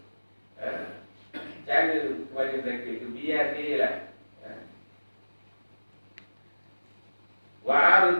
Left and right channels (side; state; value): both; inverted; correlation -1.00